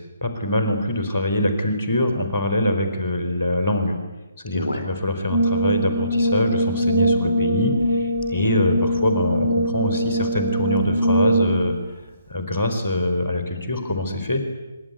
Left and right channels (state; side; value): inverted; both; correlation -0.66